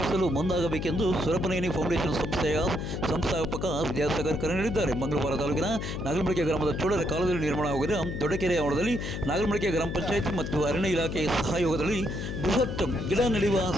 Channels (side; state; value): left; noise; hum, 4 dB below the sound